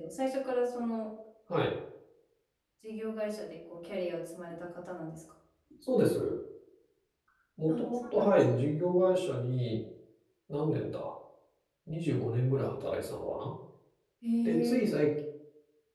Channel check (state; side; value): identical; both; correlation 1.00